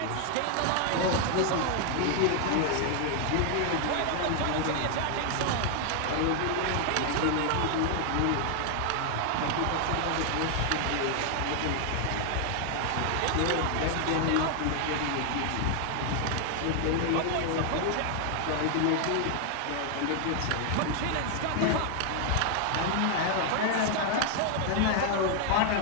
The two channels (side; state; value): both; different; correlation 0.00